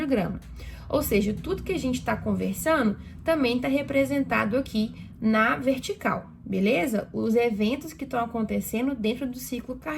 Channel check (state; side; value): identical; both; correlation 1.00